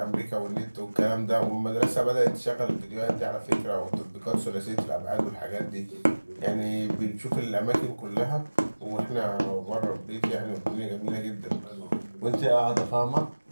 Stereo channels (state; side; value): inverted; both; correlation -1.00